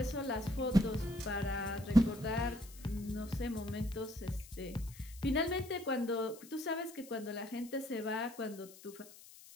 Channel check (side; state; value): left; noise; hiss, 19 dB below the sound